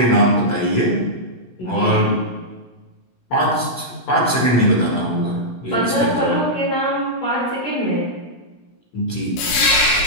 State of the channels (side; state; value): right; late; 16 ms